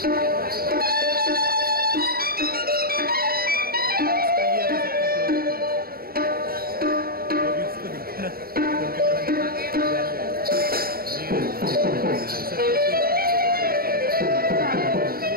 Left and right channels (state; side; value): late; left; 0.43 ms